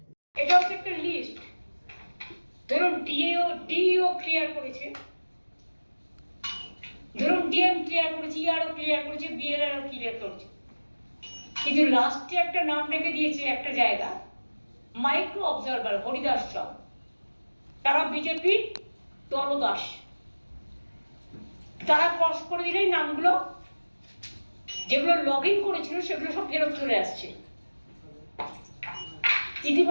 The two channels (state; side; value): inverted; both; correlation -1.00